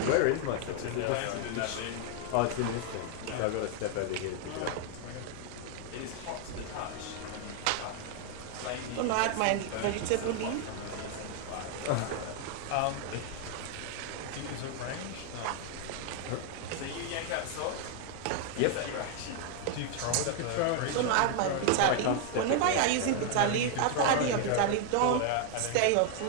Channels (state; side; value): different; both; correlation 0.00